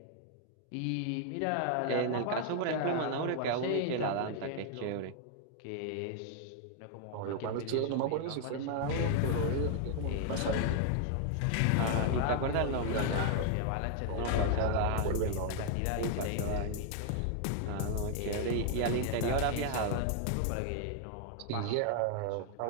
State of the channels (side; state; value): both; different; correlation 0.00